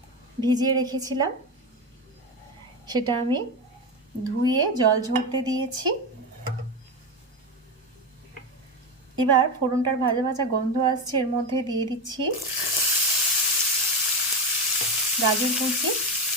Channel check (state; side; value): normal; both; correlation 0.16